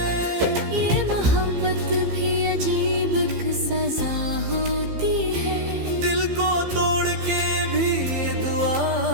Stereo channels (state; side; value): late; left; 15 ms